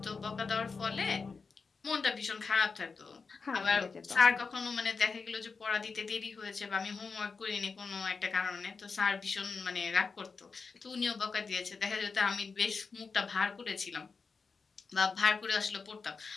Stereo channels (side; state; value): right; quieter; 4.8 dB